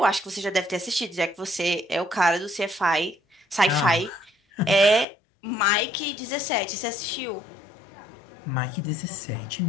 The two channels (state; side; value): drops out; right; at 5.1 s